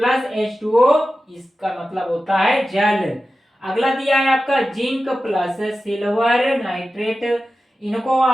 H2O, इसका मतलब होता है जल। अगला दिया है आपका जिंक प्लस सिल्वर नाइट्रेट, इनको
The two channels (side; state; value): both; normal; correlation 0.94